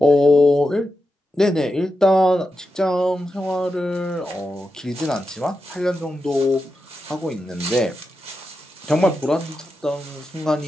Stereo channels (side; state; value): both; normal; correlation 0.89